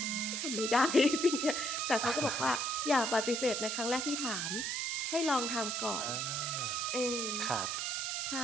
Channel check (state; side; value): noise; right; hiss, 2 dB below the sound